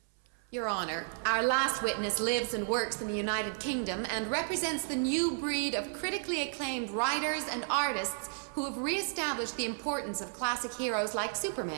Your Honor, our last witness lives and works in the United Kingdom and represents the new breed of critically acclaimed writers and artists who have reestablished the importance of classic heroes like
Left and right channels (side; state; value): left; silent; 56 dB below the other